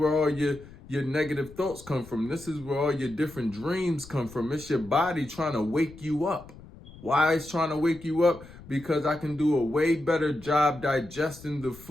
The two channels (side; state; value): left; noise; rumble, 19 dB below the sound